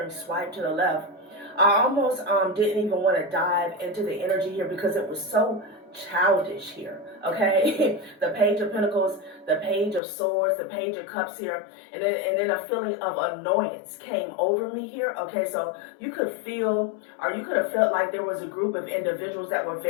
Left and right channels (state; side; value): drops out; right; at 10.0 s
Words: swipe to the left. I almost didn't even want to dive into the energy here because it was so childish here, okay? The Page of Pentacles, the Page of Swords, the Page of Cups here, and then a feeling of annoyance came over me here, okay? So you could feel, or you could have felt like there was a group of individuals that were